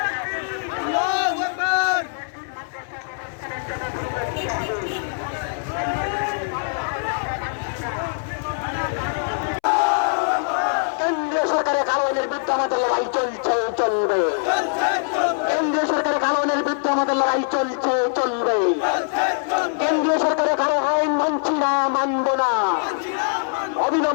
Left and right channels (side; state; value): right; silent; 64 dB below the other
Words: কেন্দ্রীয় সরকারের কারণের বিরুদ্ধে আমাদের লড়াই চলছে, চলবে। কেন্দ্রীয় সরকারের কারণের বিরুদ্ধে আমাদের লড়াই চলছে, চলবে। কেন্দ্রীয় সরকারের কারো আইন মানছি না, মানবো না।